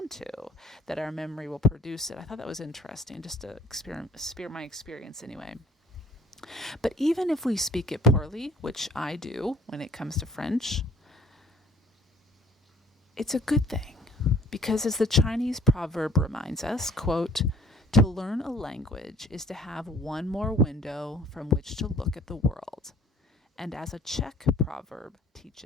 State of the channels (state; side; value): normal; both; correlation 0.54